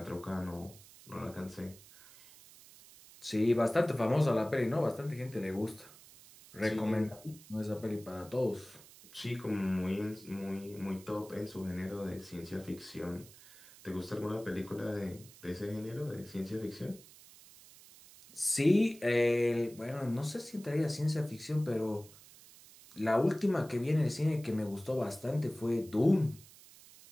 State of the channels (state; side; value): noise; right; hiss, 21 dB below the sound